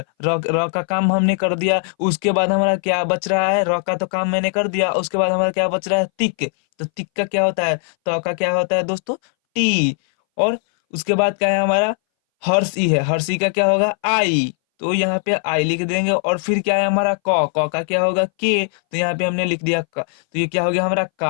र र का काम हमने कर दिया, उसके बाद हमारा क्या बच रहा है, र का तो काम मैंने कर दिया, उसके बाद हमारा क्या बच रहा है, तिक। तो तिक का क्या होता है, तो का क्या होता है दोस्तों, टी। और उसके बाद क्या है हमारा, हर्षी है, हर्षी का क्या होगा, आई। तो यहाँ पे आई लिख देंगे, और फिर क्या है हमारा क का क्या होगा, के। तो यहाँ पे हमने लिख दिया क। तो ये क्या हो गया हमारा,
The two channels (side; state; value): right; silent; 62 dB below the other